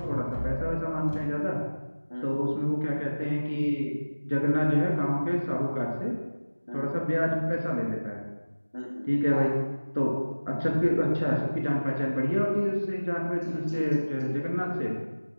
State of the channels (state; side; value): inverted; both; correlation -1.00